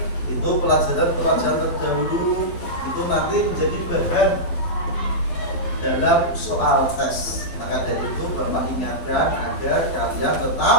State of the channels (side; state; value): right; late; 12 ms